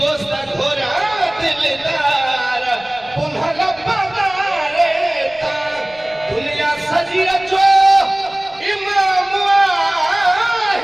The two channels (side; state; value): right; noise; rumble, 28 dB below the sound